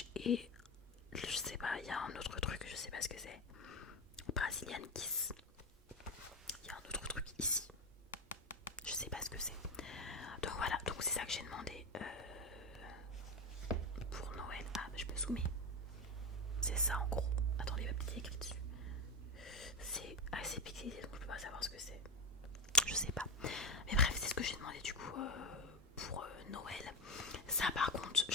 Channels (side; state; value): both; normal; correlation 0.14